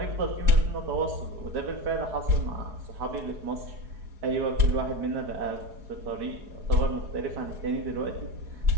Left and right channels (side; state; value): left; late; 4.7 ms